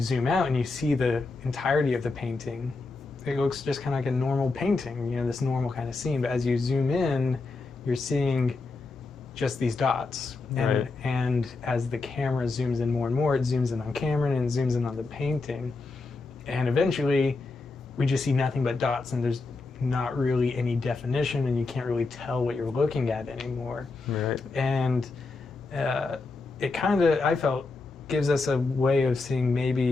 out and you see the entirety of the painting, it looks just kind of like a normal painting, this normal kind of scene. But as you zoom in, you're seeing just these dots. And as the camera zooms in more and more, it zooms in on Cameron and zooms in on the painting. And eventually, we just see nothing but dots, and there's not really any definition, and you can't really tell what you're looking at anymore. Right. And it kind of, I felt, gives us a way of seeing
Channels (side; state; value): right; quieter; 3.7 dB